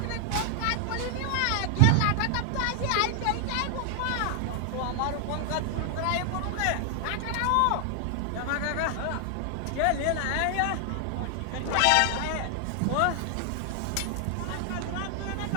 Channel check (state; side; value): different; both; correlation 0.00